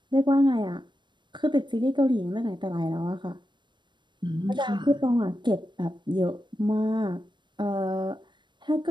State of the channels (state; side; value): late; left; 0.22 ms